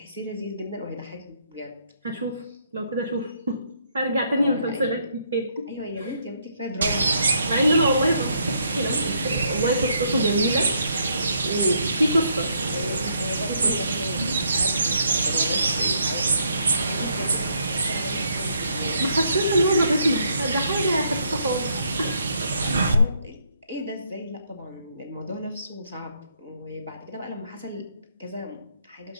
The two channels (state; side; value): inverted; both; correlation -0.71